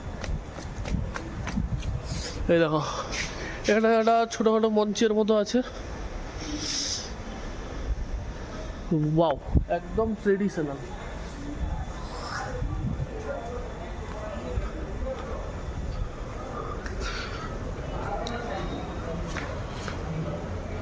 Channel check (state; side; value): identical; both; correlation 1.00